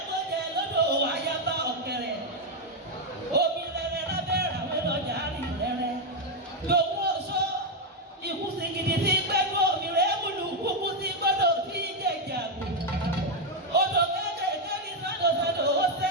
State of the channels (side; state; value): both; normal; correlation 0.03